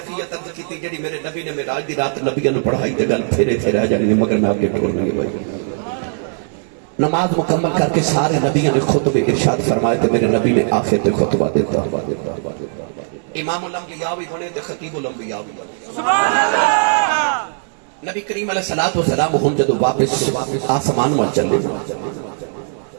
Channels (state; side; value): silent; left; digital silence